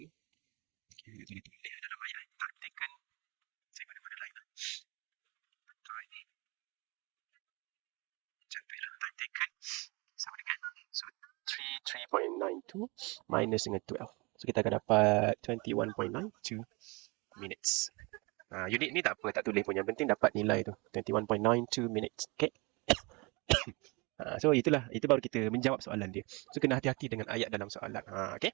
Okay, kita tulis dalam ayat. Time taken. Saya mana-mana lain lah. Macam tu lah. Time taken. Sama dengan. So, 3.92 minus dengan 12. So, kita akan dapat 21.92 minutes. Unit ni tak apa, tak tulis pun. Yang penting dapat nilai tu. 21.92 minutes. Okay. So, itu baru kita menjawab soalan dia. So, kena hati-hati dengan ayat dalam soalan. Okay.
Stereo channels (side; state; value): left; quieter; 27.4 dB